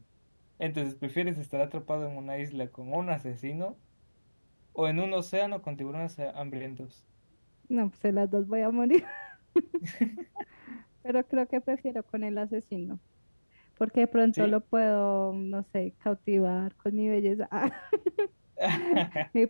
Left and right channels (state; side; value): inverted; both; correlation -1.00